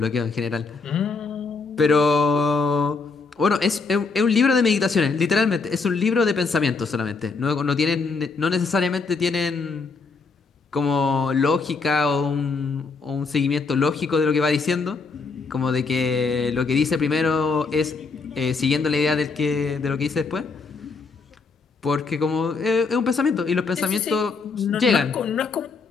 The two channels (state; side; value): quieter; right; 4.4 dB